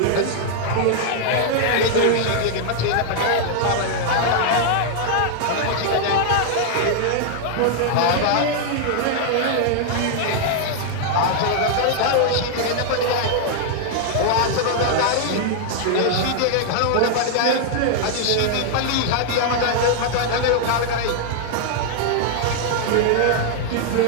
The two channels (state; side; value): different; both; correlation -0.01